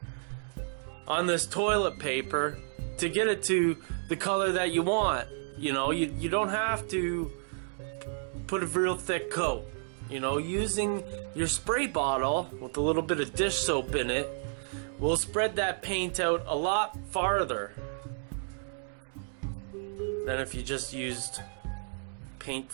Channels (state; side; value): silent; left; digital silence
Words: on this toilet paper to get it to the color that you want. You know, you don't have to put a real thick coat. You know, using your spray bottle with a little bit of dish soap in it will spread that paint out a lot farther than if you just used paint